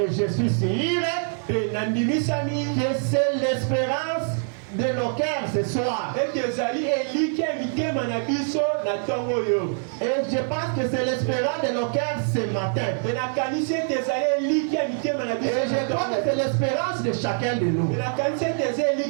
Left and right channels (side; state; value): left; silent; 58 dB below the other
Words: je suis sûr que c'est l'espérance de nos cœurs ce soir. Et je pense que c'est l'espérance de nos cœurs ce matin. Et je crois que c'est l'espérance de chacun de nous. Nous